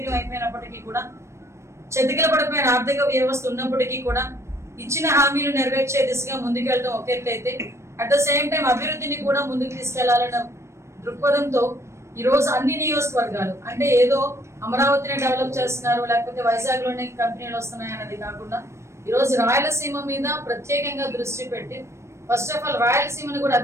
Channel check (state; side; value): late; left; 0.13 ms